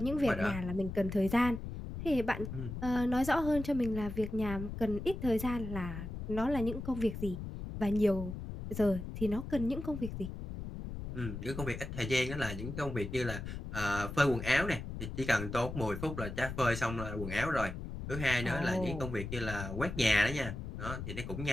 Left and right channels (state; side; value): noise; left; rumble, 7 dB below the sound